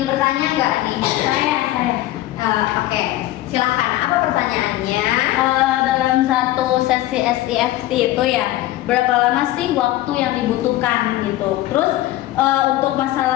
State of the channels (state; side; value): quieter; right; 15.6 dB